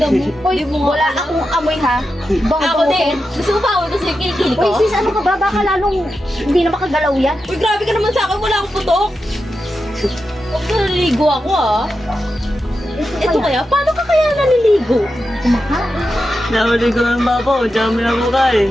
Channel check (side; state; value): both; normal; correlation 0.89